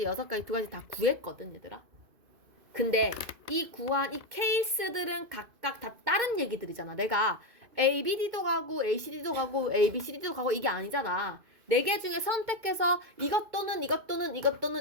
6가지, 2가지 다 구했거든, 얘들아. 근데 이 구한 이 케이스들은 각각 다 다른 얘기들이잖아. 내가 ABD도 가고 ACD도 가고 ABCD도 가고 이게 아니잖아. 4개 중에 선택해서 이것 또는 이것 또는 이것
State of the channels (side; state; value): left; late; 2.5 ms